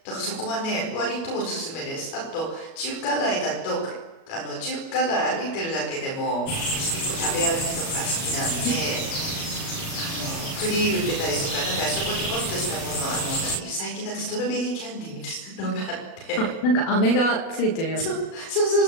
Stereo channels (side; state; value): right; late; 37 ms